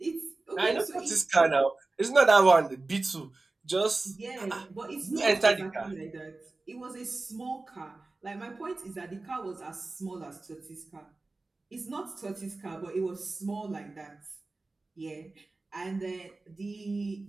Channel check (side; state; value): left; quieter; 3.3 dB